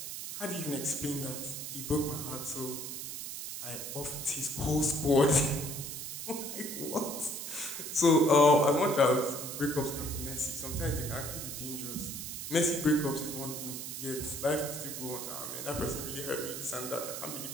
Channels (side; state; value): right; noise; hiss, 7 dB below the sound